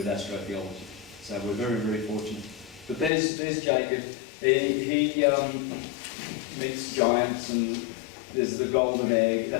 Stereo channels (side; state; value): right; drops out; at 3.1 s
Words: astrotheology. So we're very, very fortunate. But there's Jacob. He meets giants, and there's the golden egg,